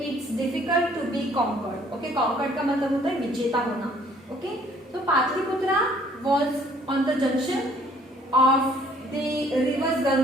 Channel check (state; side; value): normal; both; correlation 0.59